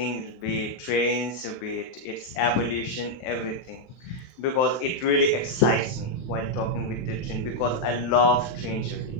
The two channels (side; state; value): right; late; 23 ms